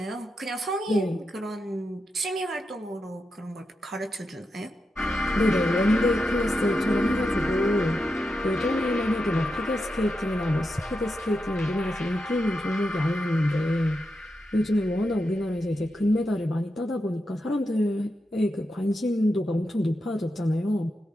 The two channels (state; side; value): normal; both; correlation 0.87